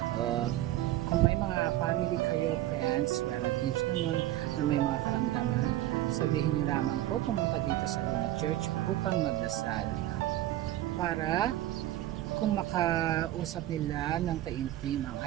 kung may mga family kayo, friends, relatives naman na may mga karamdaman, sabihin nyo lamang po pumunta dito sa Luna Church upang magdasal para kung makausap nila ng taimtim ang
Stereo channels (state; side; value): quieter; left; 14.5 dB